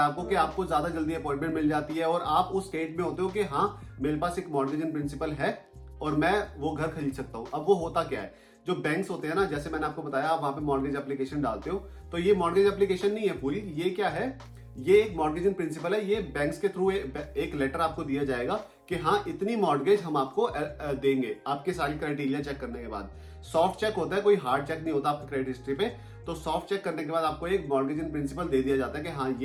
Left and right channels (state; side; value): identical; both; correlation 1.00